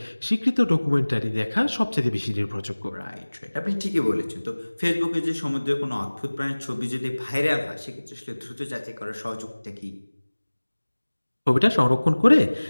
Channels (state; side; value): inverted; both; correlation -1.00